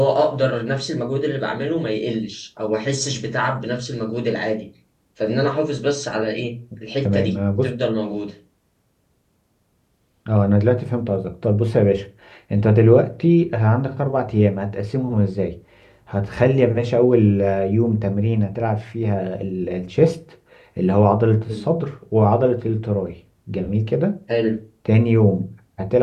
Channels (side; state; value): both; identical; correlation 1.00